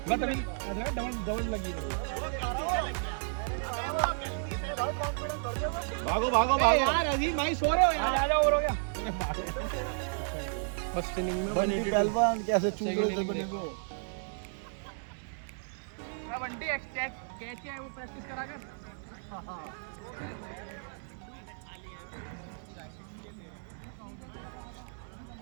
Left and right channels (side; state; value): left; silent; 56 dB below the other